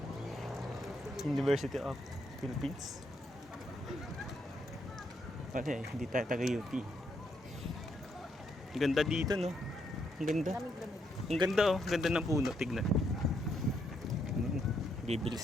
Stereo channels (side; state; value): both; normal; correlation 0.76